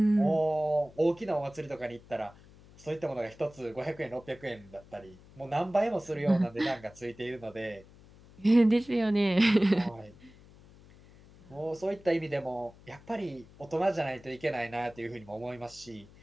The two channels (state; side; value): noise; left; hum, 23 dB below the sound